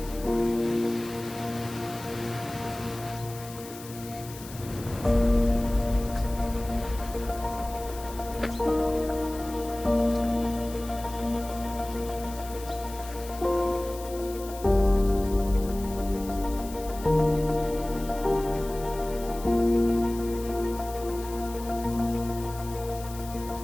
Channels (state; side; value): noise; left; hiss, 16 dB below the sound